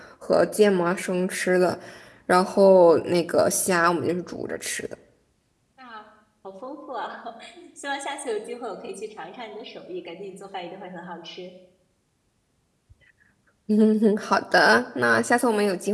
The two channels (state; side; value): identical; both; correlation 1.00